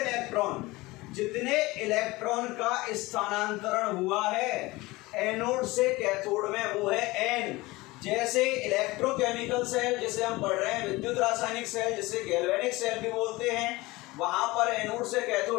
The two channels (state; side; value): quieter; right; 21.2 dB